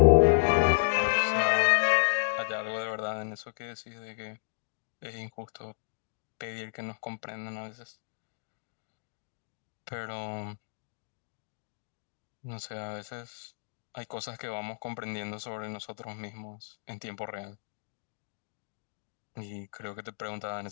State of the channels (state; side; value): silent; right; digital silence